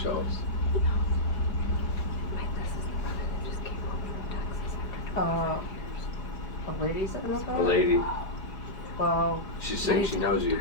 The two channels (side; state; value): right; late; 5.1 ms